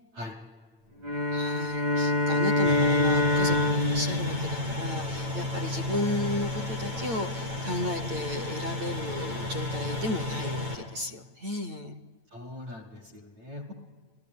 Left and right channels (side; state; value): left; late; 9.0 ms